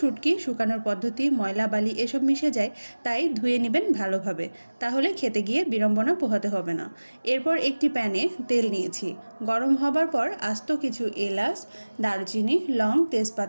শুকানোর পদ্ধতি ময়লা বালি এসব মিশে যায়, তাই ধুয়ে নেবেন ভালোভাবে, তাহলে খেতে গিয়ে বিড়ম্বনা পোহাতে হবে না। এরপর একটি প্যানে তেল নিয়েছি, গরম হবার পর আস্ত কিছু এলাচ, দারুচিনি, লং,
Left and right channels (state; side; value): inverted; both; correlation -1.00